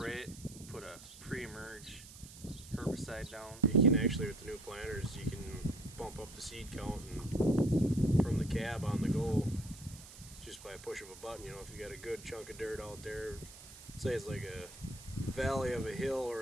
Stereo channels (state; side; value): noise; right; hiss, 17 dB below the sound